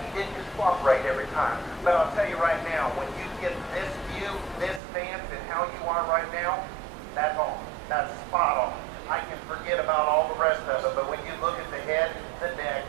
didn't just cooperate every time. But I'll tell you right now, when you get this view, this stance, and how you are right now, that's all. That's spot on. I can forget about all the rest of it, but when you look at the head, the neck,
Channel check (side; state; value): left; drops out; at 4.8 s